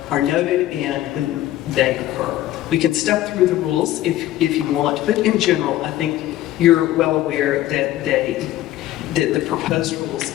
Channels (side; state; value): right; quieter; 14.2 dB